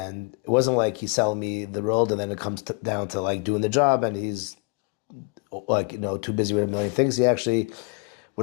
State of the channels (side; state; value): right; quieter; 32.6 dB